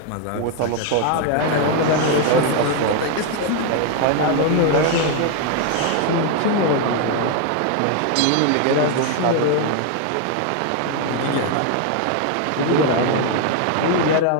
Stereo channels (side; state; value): both; different; correlation 0.01